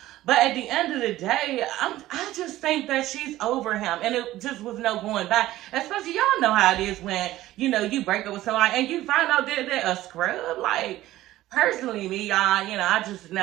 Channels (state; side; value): quieter; left; 15.5 dB